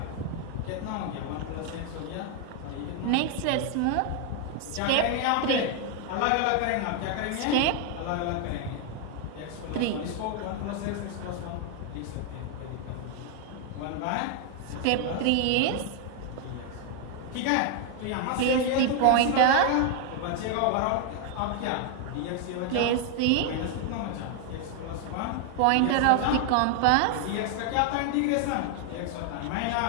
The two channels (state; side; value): different; both; correlation 0.01